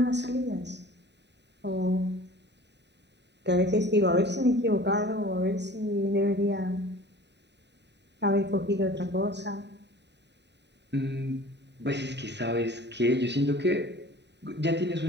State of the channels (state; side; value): late; left; 0.50 ms